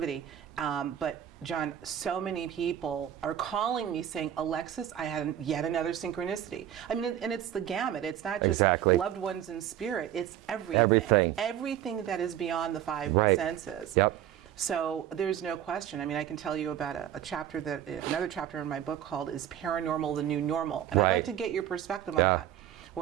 But John, so many people are calling me saying, Alexis, I had yet another synchronicity. I mean, and it's the gamut. It's not just Exactly. loved ones in spirit. It's everything. Everything that is beyond the five Right. senses. Yep. So there's no question. I mean, I can tell you about another chapter in my book called Is Paranormal the New Normal? And I'd like Right. to get your perspective on that,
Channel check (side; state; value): left; quieter; 11.0 dB